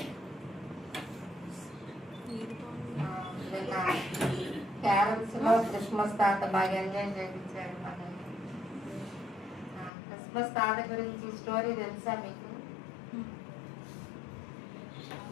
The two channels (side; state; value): right; drops out; at 9.9 s